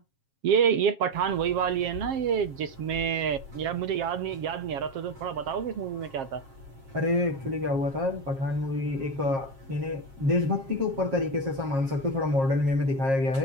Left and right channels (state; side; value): late; left; 7.4 ms